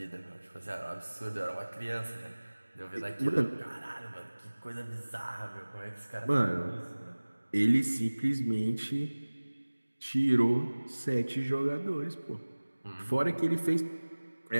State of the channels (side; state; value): both; inverted; correlation -1.00